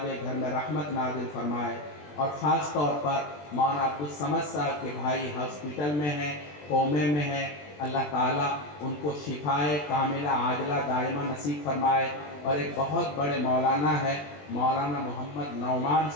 घर में रहमत नाजिल फरमाए। और ख़ास तौर पर मौलाना अब्दुल समद साहब के भाई हॉस्पिटल में हैं, कोमे में हैं, अल्लाह ताला उनको शिफाए कामिला आजला दायमा नसीब फरमाए। और एक बहुत बड़े मौलाना है, मौलाना मोहम्मद नौमान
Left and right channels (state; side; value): late; right; 20 ms